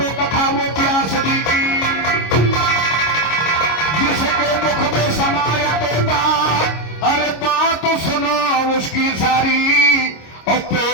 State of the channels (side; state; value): right; late; 26 ms